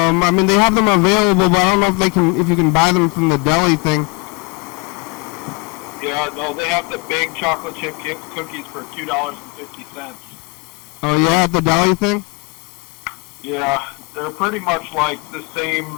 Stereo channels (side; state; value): right; quieter; 30.1 dB